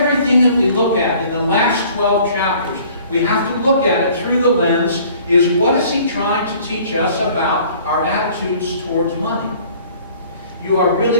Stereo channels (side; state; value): both; inverted; correlation -0.53